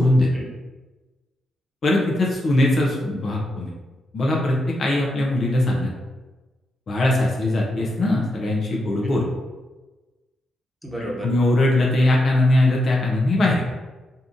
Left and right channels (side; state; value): both; normal; correlation 0.84